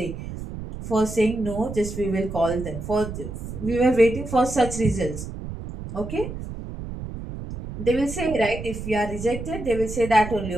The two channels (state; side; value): noise; right; rumble, 9 dB below the sound